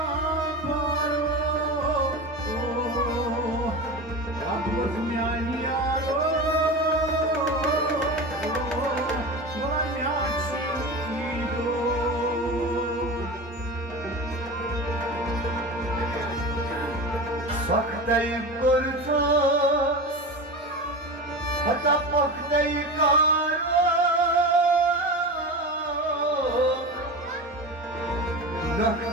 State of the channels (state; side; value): normal; both; correlation 0.27